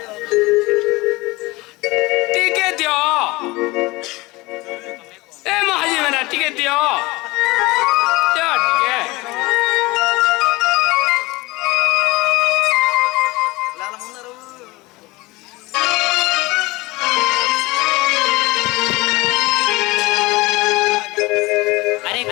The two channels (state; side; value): quieter; right; 22.1 dB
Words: টিকে দিও এ মহাজি মেনা টিকে দিও দিও টিকে अरे